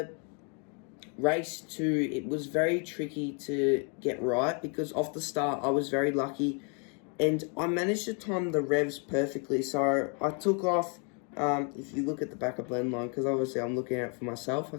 race 2, it was very tricky to get right because off the start I was very lucky and I managed to time the revs perfectly. So I took off, if you look at the back of blend line, because obviously I'm looking out for myself, I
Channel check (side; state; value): right; quieter; 37.7 dB